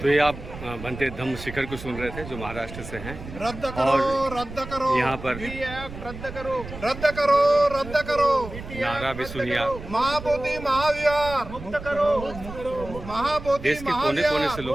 तो ये आप बनते धम्म शिखर को सुन रहे थे जो महाराष्ट्र से हैं। रद्द करो, रद्द करो, यहाँ पर रद्द करो, रद्द करो, रद्द करो, नारा भी सुनिए आप। महाबोधि महाविहार मुक्त करो, महाबोधि देश के कोने कोने से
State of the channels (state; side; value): noise; right; rumble, 12 dB below the sound